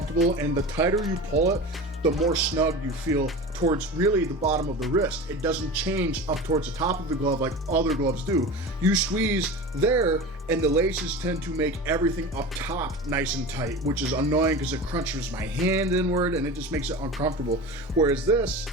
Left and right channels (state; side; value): normal; both; correlation 0.31